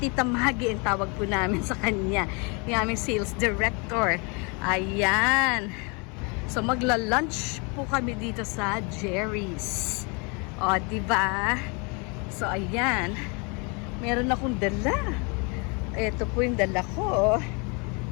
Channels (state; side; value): quieter; right; 32.3 dB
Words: Maggie ang tawag po namin sa kanya. Yung aming sales director. Ayan. So magla-lunch po kami dito sa Jerry's. O, diba? So ayan. Meron akong dala. Ito po yung dala ko